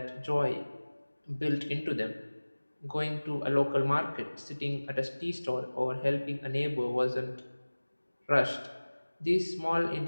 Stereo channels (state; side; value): inverted; both; correlation -1.00